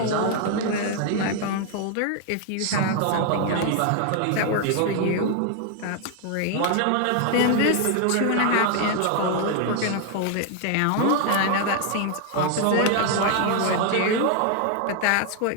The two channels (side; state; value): both; different; correlation 0.00